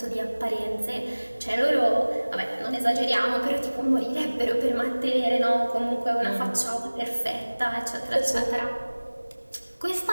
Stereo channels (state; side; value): inverted; both; correlation -1.00